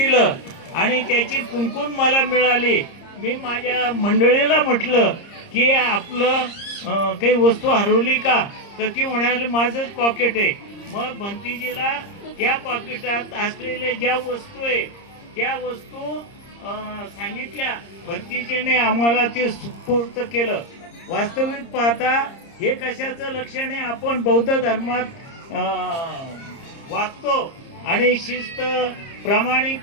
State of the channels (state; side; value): late; right; 30 ms